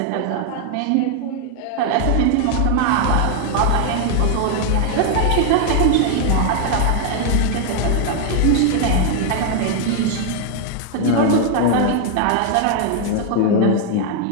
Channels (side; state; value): both; different; correlation 0.00